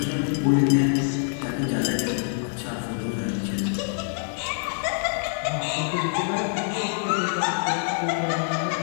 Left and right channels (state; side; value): silent; right; digital silence